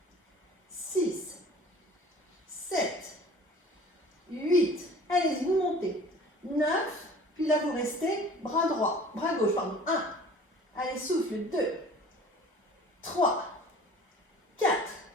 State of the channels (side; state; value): both; normal; correlation 0.46